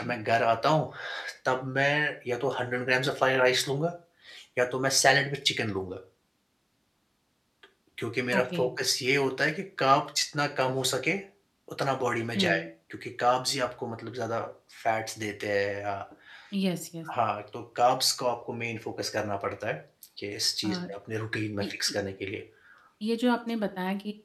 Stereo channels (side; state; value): both; identical; correlation 1.00